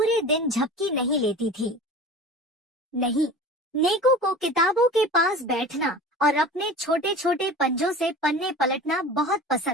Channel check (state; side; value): normal; both; correlation 0.38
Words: दिन झपकी नहीं लेती थी। नहीं, नेको को किताबों के पास बैठना और अपने छोटे छोटे पंजों से पन्ने पलटना बहुत